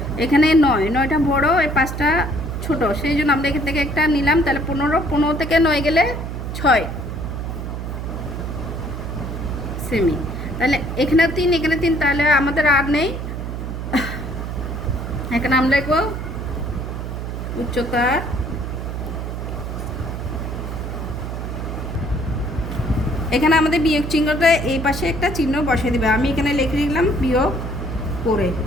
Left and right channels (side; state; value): right; noise; hum, 5 dB below the sound